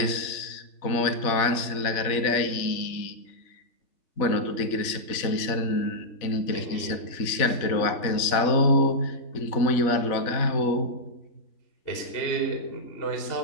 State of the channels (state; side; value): late; right; 4.0 ms